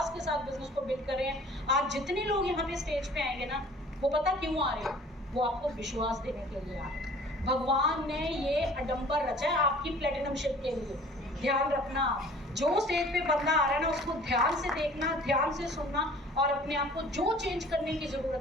के साथ बिजनेस को बिल्ड कर रहे हैं। आज जितने लोग यहाँ पे स्टेज पे आएंगे ना, वो पता क्यों आ रहे हैं? वो आपको विश्वास देने के लिए आ रहे हैं। भगवान ने ये अडंबर रचा है आपकी प्लेटिनमशिप के लिए। ध्यान रखना, जो स्टेज पे बंदा आ रहा है ना, उसको ध्यान से देखना, ध्यान से सुनना और अपने आप को जो चेंज करने की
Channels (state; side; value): normal; both; correlation 0.49